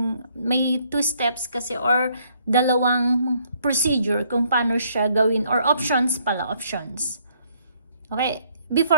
may 2 steps kasi, or dalawang procedure kung paano siya gawin, or options. Okay,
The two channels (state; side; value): inverted; both; correlation -0.67